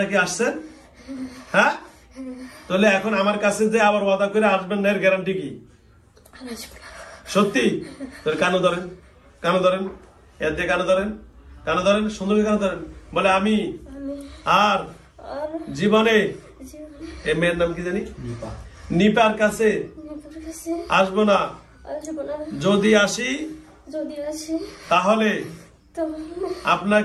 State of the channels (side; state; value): both; identical; correlation 1.00